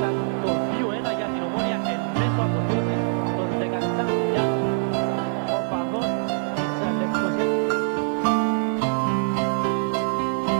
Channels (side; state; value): left; silent; 59 dB below the other